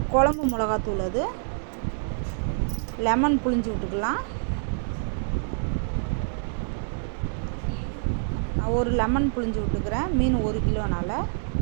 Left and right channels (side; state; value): left; silent; 61 dB below the other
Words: குழம்பு மிளகாத்தூள், அது லெமன் புழிஞ்சு விட்டுக்கலாம். நான் ஒரு லெமன் புழிஞ்சு விட்டுக்கிறேன். மீன் 1 கிலோனால